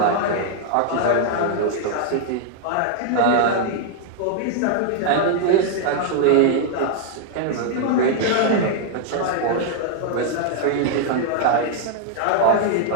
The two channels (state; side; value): different; both; correlation 0.00